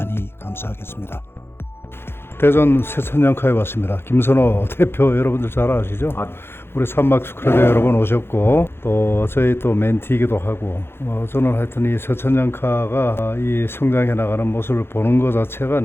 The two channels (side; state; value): right; late; 0.11 ms